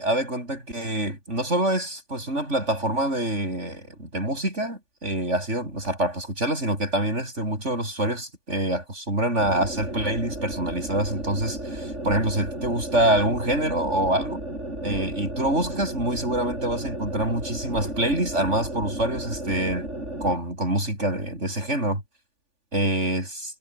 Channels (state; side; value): late; left; 3.4 ms